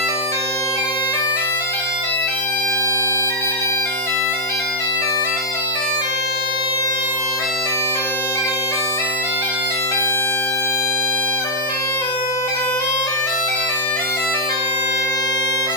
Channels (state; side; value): normal; both; correlation -0.05